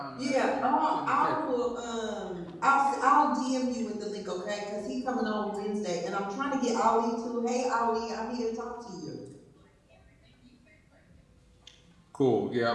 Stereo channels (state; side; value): identical; both; correlation 1.00